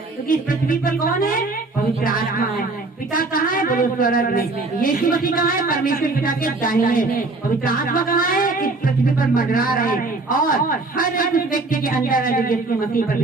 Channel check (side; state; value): left; quieter; 3.4 dB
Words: क्योंकि इस पृथ्वी पर कौन है? पवित्र आत्मा है। पिता कहाँ है? बोलो स्वर्ग में। यीशु मसीह कहाँ है? परमेश्वर पिता के दाहिने। पवित्र आत्मा कहाँ है? इस पृथ्वी पर मंडरा रहे हैं। और हर एक उस व्यक्ति के अंदर है जो यीशु मसीह पर